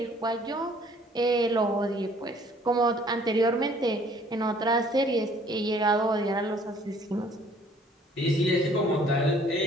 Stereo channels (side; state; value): both; normal; correlation 0.58